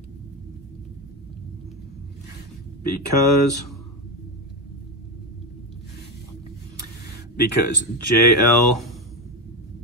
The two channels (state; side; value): normal; both; correlation 0.13